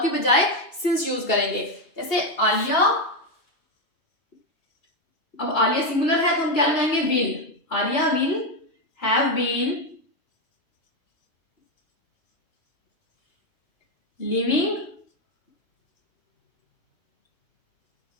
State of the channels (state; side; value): late; right; 2.6 ms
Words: की बजाय सिंस यूज करेंगे। जैसे आलिया, अब आलिया सिंगुलर है तो हम क्या लगाएंगे, will. Alia will have been living